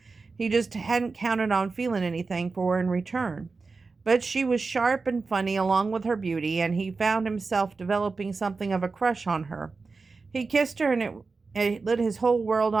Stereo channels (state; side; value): quieter; left; 4.2 dB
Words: He just hadn't counted on feeling anything for her in return. But she was sharp and funny along with her beauty, and he found himself developing something of a crush on her. He kissed her, and it lit his whole world